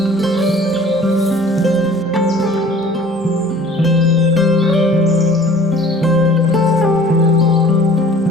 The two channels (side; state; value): both; normal; correlation 0.50